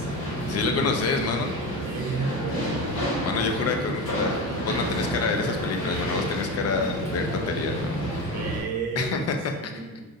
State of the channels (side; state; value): both; normal; correlation 0.23